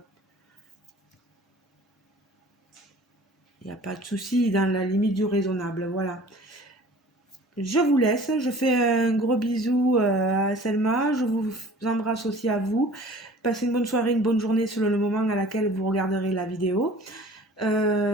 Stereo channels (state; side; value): normal; both; correlation 0.47